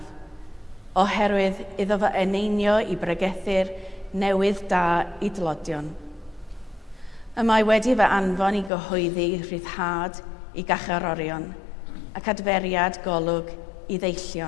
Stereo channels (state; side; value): drops out; right; at 8.7 s